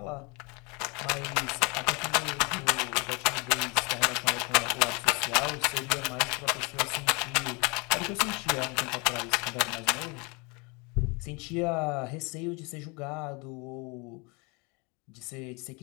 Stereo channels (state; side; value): quieter; right; 29.5 dB